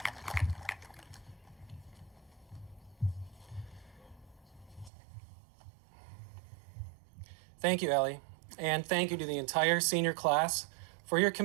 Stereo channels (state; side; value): drops out; left; at 4.9 s